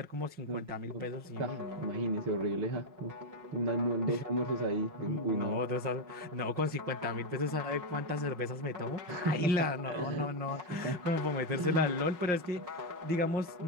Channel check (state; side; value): late; left; 5.6 ms